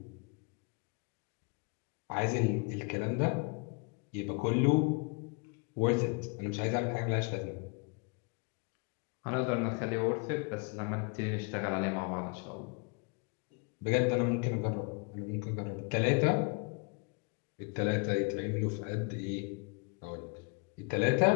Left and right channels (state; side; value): quieter; right; 33.3 dB